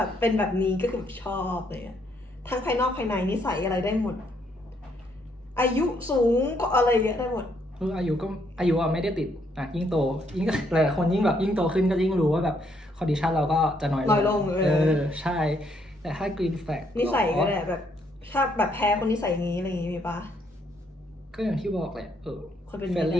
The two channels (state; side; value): normal; both; correlation 0.72